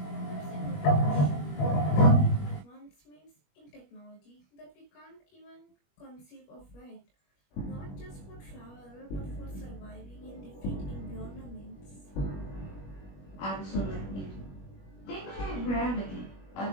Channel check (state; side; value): late; right; 21 ms